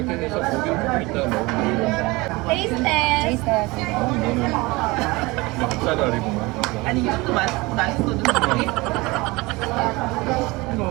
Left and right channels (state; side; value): quieter; left; 23.1 dB